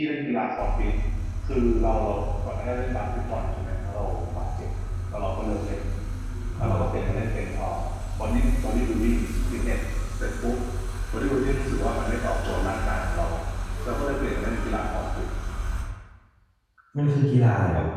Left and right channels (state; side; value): identical; both; correlation 1.00